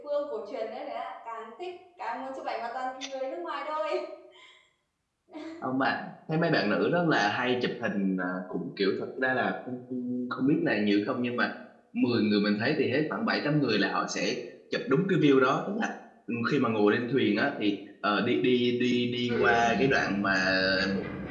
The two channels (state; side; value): identical; both; correlation 1.00